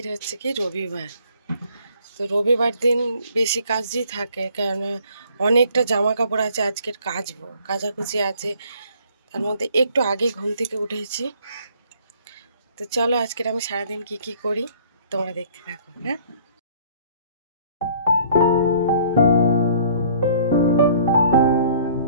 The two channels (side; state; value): both; inverted; correlation -0.56